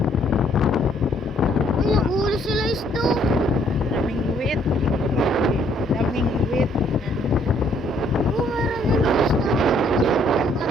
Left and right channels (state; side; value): normal; both; correlation 0.65